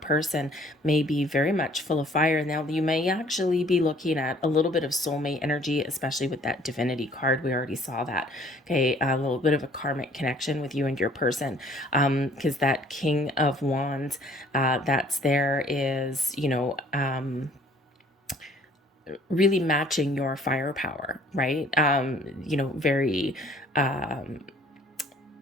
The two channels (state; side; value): normal; both; correlation 0.57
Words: may be very much full of fire. Now, you may actually be looking at a little bit of soulmate energy, especially with that divinity card. We already saw that. Okay, a little bit of a karmic connection with you and your person, because that King of Wands that's there is, really matching your firepower, right? Very, how